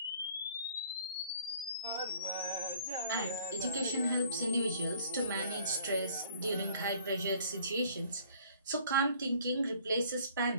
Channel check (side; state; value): both; inverted; correlation -0.56